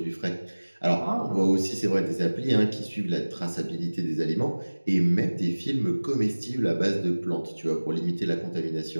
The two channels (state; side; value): inverted; both; correlation -1.00